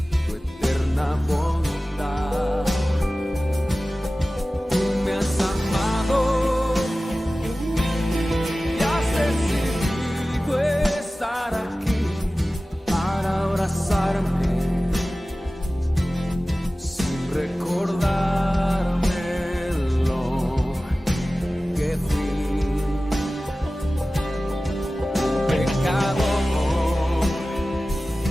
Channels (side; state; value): both; normal; correlation 0.96